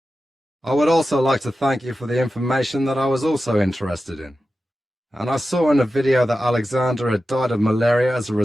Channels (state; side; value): normal; both; correlation 0.92